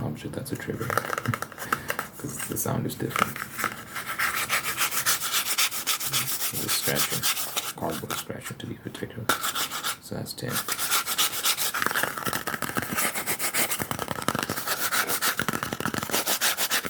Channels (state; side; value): identical; both; correlation 1.00